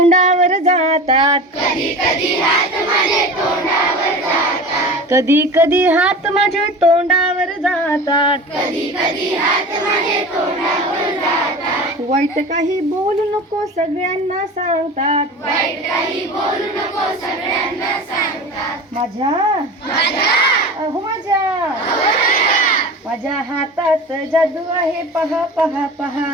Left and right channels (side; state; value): both; normal; correlation 0.34